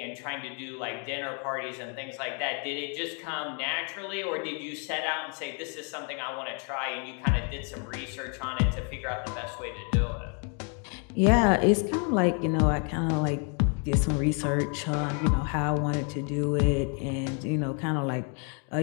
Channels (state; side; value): quieter; right; 39.1 dB